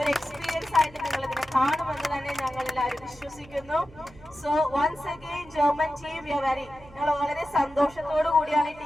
ഒരു എക്സ്പീരിയൻസ് ആയിട്ട് നിങ്ങൾ ഇതിനെ കാണുമെന്ന് തന്നെ ഞങ്ങൾ എല്ലാവരും വിശ്വസിക്കുന്നു. So once again German team we are very, ഞങ്ങൾ വളരെ സന്തോഷത്തോടു കൂടിയാണ് ഈ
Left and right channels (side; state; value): right; noise; hum, 22 dB below the sound